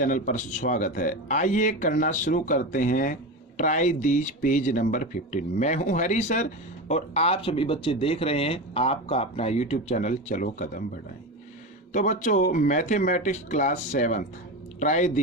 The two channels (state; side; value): normal; both; correlation 0.22